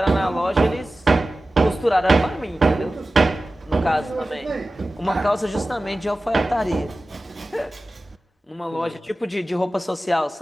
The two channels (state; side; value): normal; both; correlation 0.96